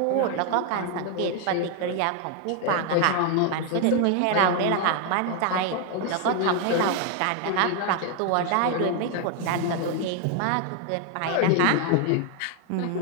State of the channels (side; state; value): both; different; correlation 0.00